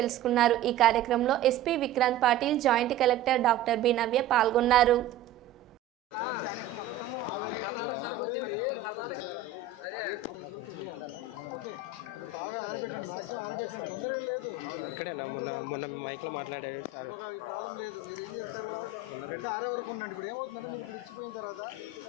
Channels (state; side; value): quieter; left; 6.0 dB